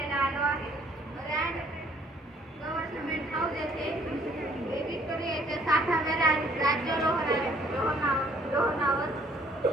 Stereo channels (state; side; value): normal; both; correlation 0.61